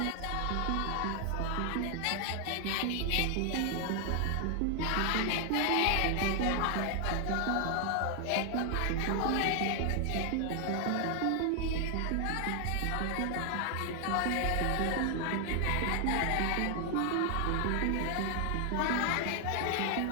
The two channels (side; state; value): both; different; correlation 0.00